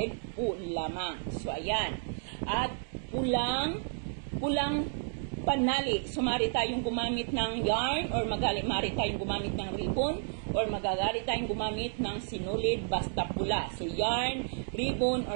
po lamang. So, ayan. At pulang panali. So, maaari tayong gumamit ng yarn or maaari tayong gumamit ng ribbon or magagari tayong gumamit ng sinulid basta pula. So, yarn, ribbon,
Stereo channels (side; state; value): left; silent; digital silence